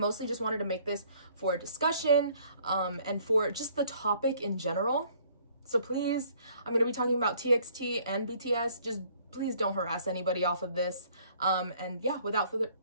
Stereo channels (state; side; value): inverted; both; correlation -0.60